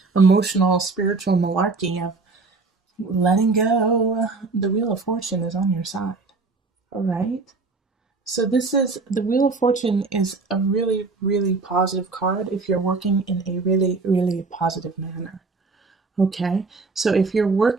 emotional, spiritual malarkey of letting go, the Wheel of Fortune is on your side. All right. So the Wheel of Fortune is a really, really positive card if you're working in a really, really positive manner. Okay, so if you're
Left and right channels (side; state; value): left; quieter; 4.0 dB